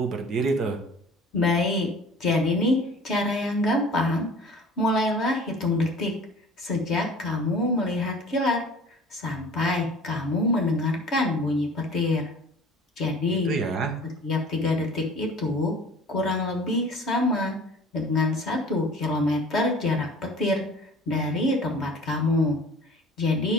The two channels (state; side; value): normal; both; correlation 0.46